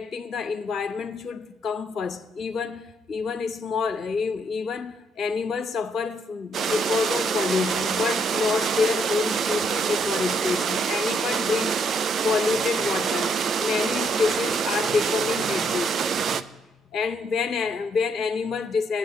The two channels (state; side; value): normal; both; correlation 0.72